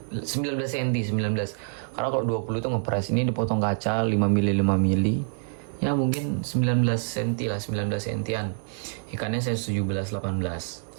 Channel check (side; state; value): left; silent; digital silence